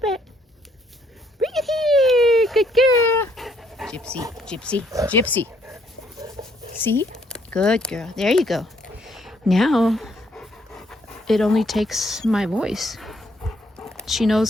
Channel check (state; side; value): normal; both; correlation 0.68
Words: Bring it here. Good girl. Gypsy, Gypsy, Gypsy. See? Good girl. There you go. Now, it only takes my voice. She